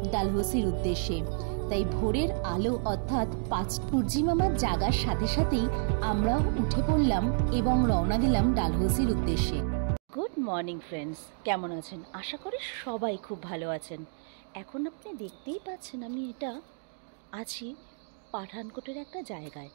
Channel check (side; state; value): left; silent; digital silence